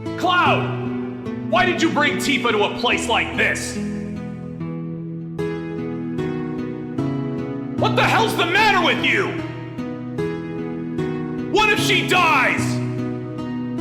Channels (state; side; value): identical; both; correlation 1.00